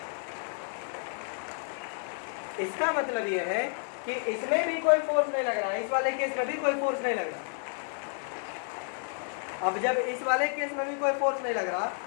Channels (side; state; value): right; silent; 57 dB below the other